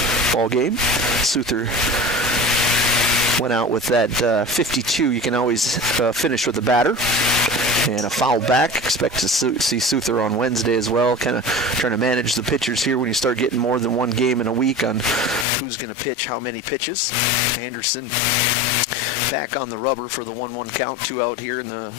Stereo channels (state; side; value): drops out; right; at 15.5 s